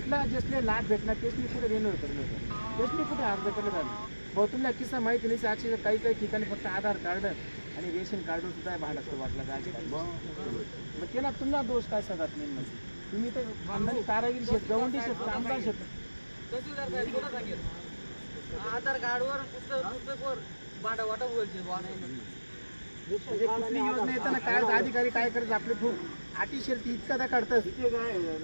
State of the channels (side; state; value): both; inverted; correlation -1.00